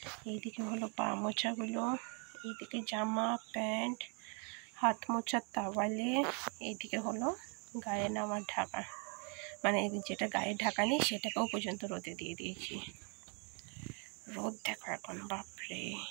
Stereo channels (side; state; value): left; quieter; 36.9 dB